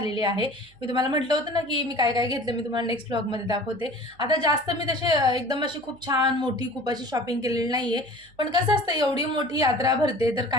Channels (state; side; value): noise; right; hum, 29 dB below the sound